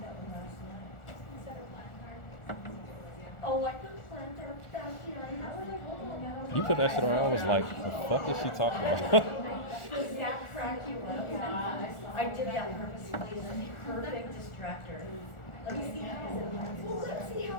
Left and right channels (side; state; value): right; late; 1.4 ms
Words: that one last night. Oh, like the plantar fasciitis. You put that shit on. I was like, the fuck is she talking about? Does that crack you up? I did that purposely. It's a perfect distractor. Let me see how. Well, let's see how